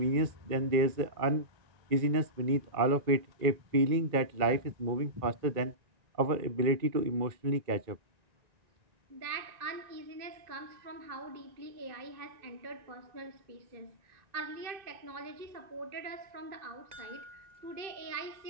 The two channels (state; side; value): late; left; 2.5 ms